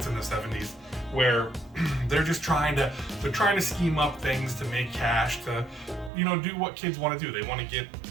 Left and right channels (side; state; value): left; drops out; at 6.1 s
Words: in the 70s, where they're just trying to scheme up things to make cash, to do what kids want to do. They want to